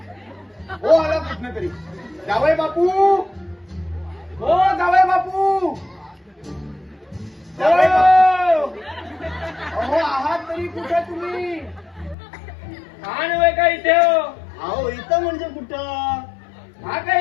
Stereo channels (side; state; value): right; drops out; at 12.2 s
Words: हो आला कुठनं तरी. जावई बापू, हो जावई बापू, जावई बापू.